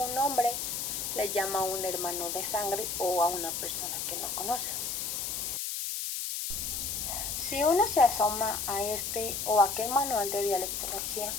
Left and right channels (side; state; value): left; noise; hiss, 3 dB below the sound